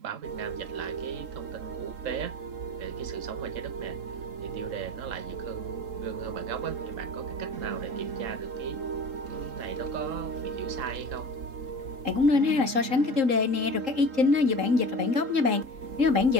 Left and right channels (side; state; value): left; late; 3.8 ms